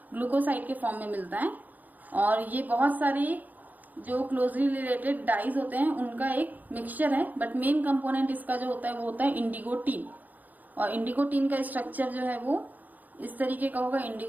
ग्लूकोसाइड के फॉर्म में मिलता है और ये बहुत सारे जो क्लोजली रिलेटेड डाइज होते हैं उनका एक मिक्सचर है, बट मेन कंपोनेंट इसका जो होता है वो होता है इंडिगोटीन। और इंडिगोटीन का स्ट्रक्चर जो है वो इस तरीके का होगा।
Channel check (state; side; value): late; left; 0.082 ms